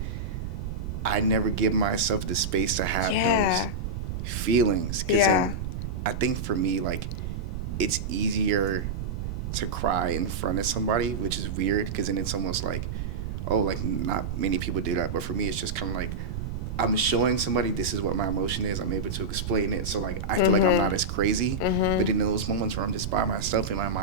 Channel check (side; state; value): right; noise; rumble, 4 dB below the sound